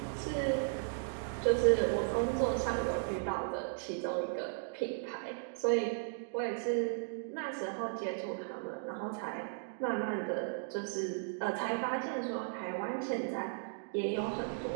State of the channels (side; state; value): left; silent; digital silence